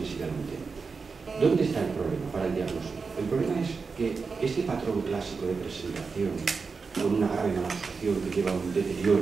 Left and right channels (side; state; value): left; quieter; 4.8 dB